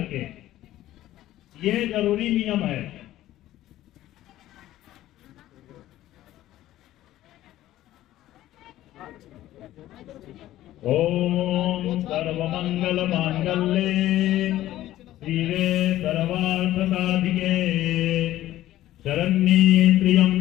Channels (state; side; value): quieter; right; 14.3 dB